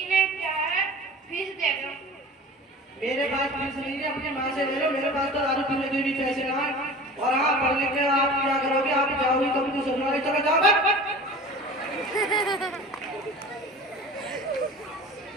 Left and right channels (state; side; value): normal; both; correlation 0.38